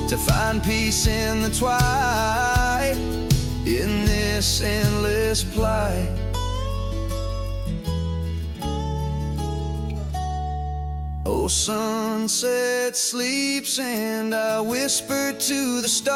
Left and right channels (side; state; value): both; identical; correlation 1.00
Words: to find peace in the twilight, in this endless plight. Oh, sunset sleeps and I whisper to the